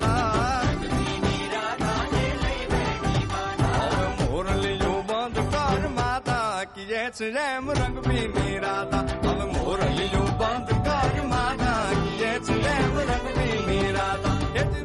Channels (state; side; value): identical; both; correlation 1.00